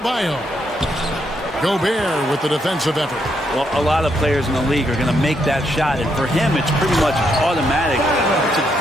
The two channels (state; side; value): normal; both; correlation 0.77